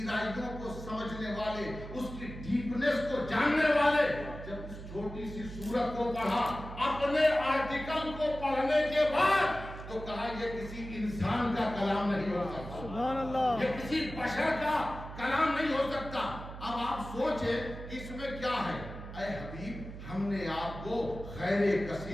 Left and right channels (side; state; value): right; noise; hum, 11 dB below the sound